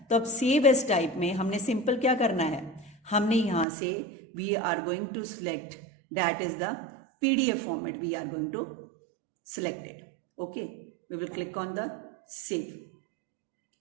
तो अब सेव एज टाइप में हमने सिंपल क्या करना है, हमने यहाँ से we are going to select that is the PDF format, we are going to selected, okay. We will click on the save.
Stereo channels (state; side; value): drops out; left; at 3.7 s